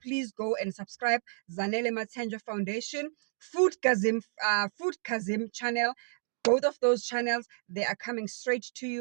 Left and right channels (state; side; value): silent; left; digital silence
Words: go and subscribe. Zanele Mathenjwa Foundation, Food Kazim channel. both of those channels, they are coming straight to